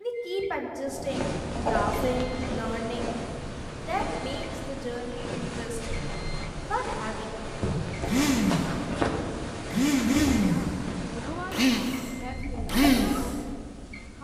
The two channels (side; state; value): both; identical; correlation 1.00